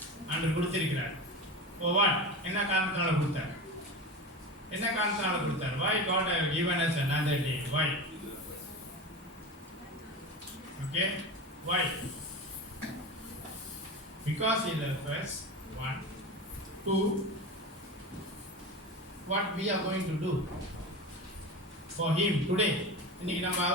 ஆண்டவர் கொடுத்திருக்கிறார். For what? என்ன காரணத்தால கொடுத்தார்? என்ன காரணத்தால கொடுத்தார்? Why God has given us another day? Why? Okay? Why? Because He loves us. One. Two. What we are going to do for Him today. இன்னைக்கு நம்ம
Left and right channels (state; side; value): normal; both; correlation 0.27